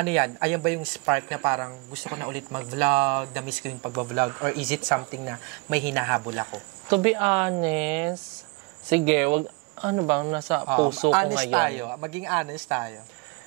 yan? Ayan ba yung spark na parang gusto ko na ulit mag-vlog, na-miss ko yung pag-vlog, or is it something na may hinahabol ako? To be honest, sige, ano bang nasa puso ko honest ngayon? Tayo. Maging honest tayo.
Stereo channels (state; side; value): quieter; left; 28.7 dB